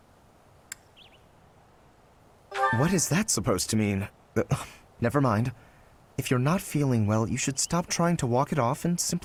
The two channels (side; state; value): both; identical; correlation 1.00